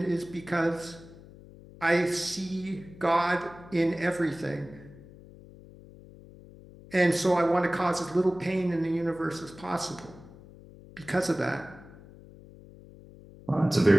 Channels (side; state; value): left; noise; hum, 20 dB below the sound